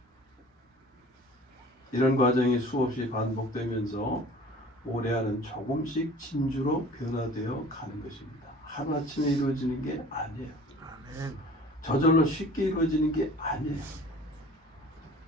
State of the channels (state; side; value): normal; both; correlation 0.46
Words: 이런 과정이 수없이 반복되면서 모래알은 조금씩 진주로 변화되어 가는 것입니다. 하루아침에 이루어지는 게 아니에요. 저절로 쉽게 이루어지는 게 아니에요.